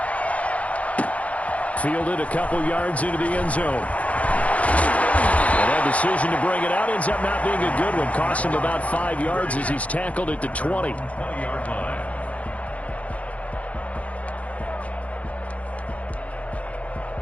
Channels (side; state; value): right; late; 0.066 ms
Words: Fielded a couple yards into the end zone. And that decision to bring it out ends up not being a good one. Cost him about 5 yards as he's tackled at the 20. 20-yard line.